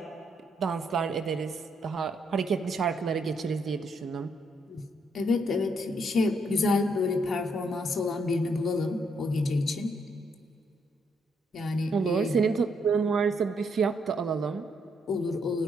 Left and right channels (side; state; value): both; normal; correlation 0.74